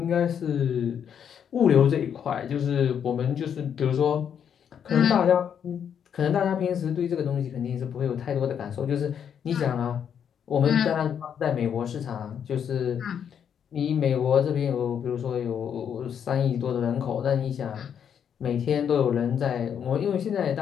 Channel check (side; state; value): right; quieter; 8.2 dB